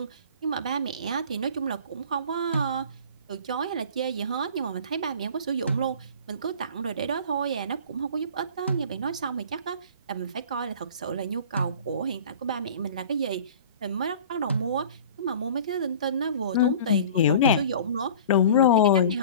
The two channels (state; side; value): inverted; both; correlation -0.42